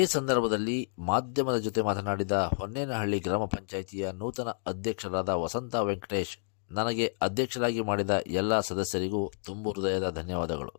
ಸಂದರ್ಭದಲ್ಲಿ ಮಾಧ್ಯಮದ ಜೊತೆ ಮಾತನಾಡಿದ ಹೊನ್ನೇನಹಳ್ಳಿ ಗ್ರಾಮ ಪಂಚಾಯಿತಿಯ ನೂತನ ಅಧ್ಯಕ್ಷರಾದ ವಸಂತ ವೆಂಕಟೇಶ್, ನನಗೆ ಅಧ್ಯಕ್ಷರಾಗಿ ಮಾಡಿದ ಎಲ್ಲ ಸದಸ್ಯರಿಗೂ ತುಂಬು ಹೃದಯದ ಧನ್ಯವಾದಗಳು.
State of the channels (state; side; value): silent; right; digital silence